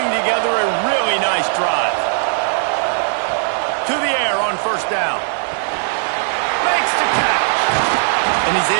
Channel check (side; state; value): left; silent; digital silence